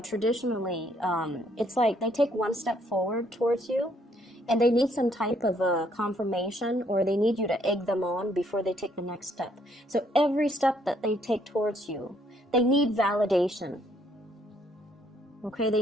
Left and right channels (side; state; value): both; normal; correlation 0.68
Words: traditionally, it's like they take one step forward towards you, and they need some type of confirmation, or they need you to egg them on before they take the next step. So every step that they take towards you, they need validation. Okay, they